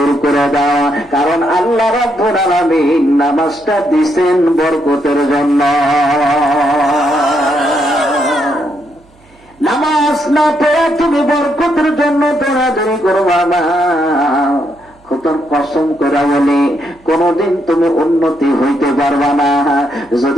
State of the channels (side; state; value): right; noise; hum, 30 dB below the sound